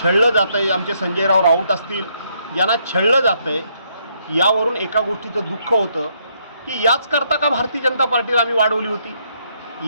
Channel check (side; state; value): both; inverted; correlation -0.73